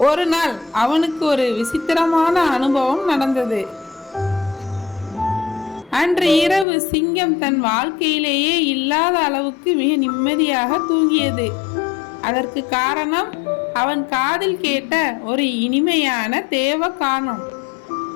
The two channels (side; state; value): right; drops out; at 6.7 s